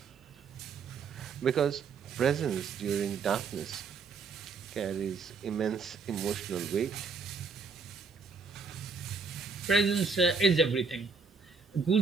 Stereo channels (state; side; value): quieter; left; 4.9 dB